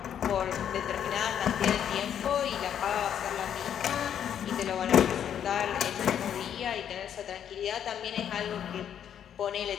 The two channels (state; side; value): quieter; right; 9.2 dB